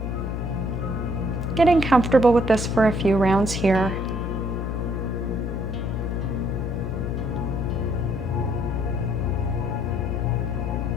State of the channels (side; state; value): left; noise; hum, 3 dB below the sound